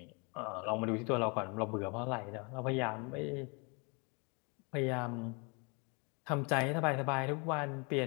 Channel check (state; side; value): quieter; right; 31.9 dB